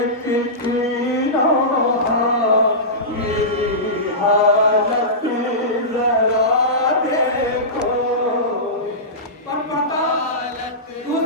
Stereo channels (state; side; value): normal; both; correlation -0.18